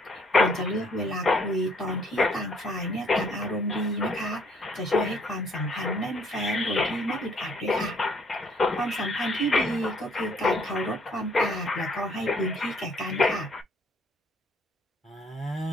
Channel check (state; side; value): normal; both; correlation 0.64